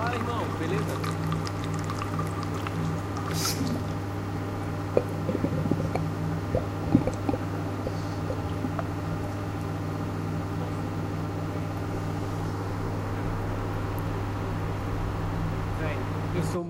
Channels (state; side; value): identical; both; correlation 1.00